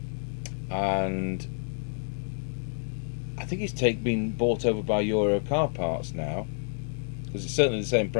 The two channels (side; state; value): right; silent; digital silence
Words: and I think it's been bought over by Euro Car Parts now, because it's certainly the same